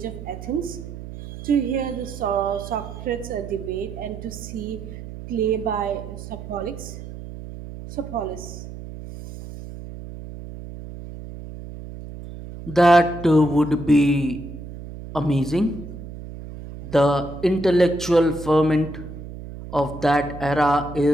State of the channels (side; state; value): right; noise; hum, 12 dB below the sound